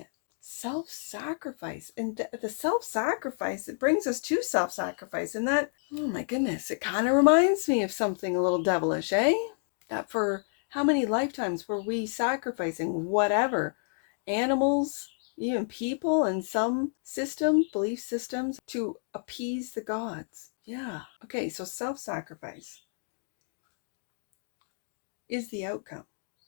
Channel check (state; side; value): silent; right; digital silence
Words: Self-sacrifice. And the self-sacrifice, it brings us to self-sacrifice. And that, oh my goodness, it kind of reminds me of something a little devilish, eh? That for how many lifetimes were we sacrificing whatever? Animals, even people, and some systems, belief systems, to appease the gods. Yeah. Okay, so self-sacrifice is the outcome.